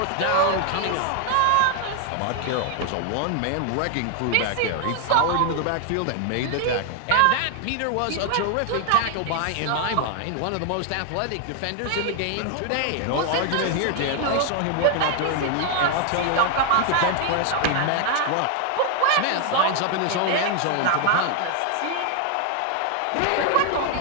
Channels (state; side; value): different; both; correlation 0.00